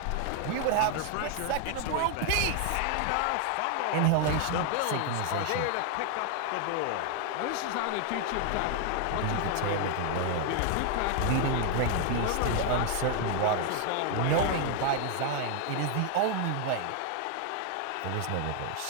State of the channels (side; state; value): both; different; correlation 0.00